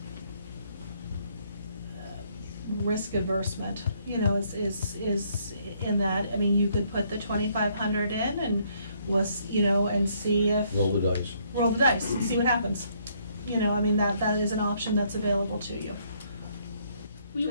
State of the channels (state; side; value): inverted; both; correlation -0.68